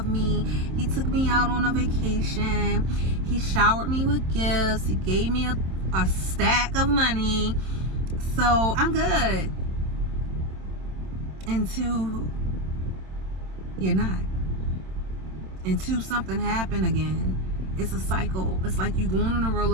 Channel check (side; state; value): left; late; 27 ms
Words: me. He took me out on a vacation. He showered me with gifts. He gave me a stack of money. So I'm good. Until you're not. Until something happened again. It's a cycle. It's like you going on a